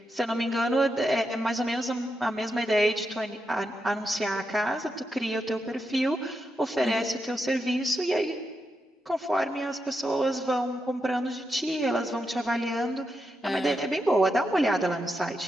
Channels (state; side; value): normal; both; correlation 0.85